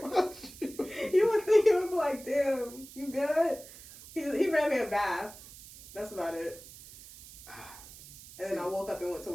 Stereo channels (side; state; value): right; noise; hiss, 17 dB below the sound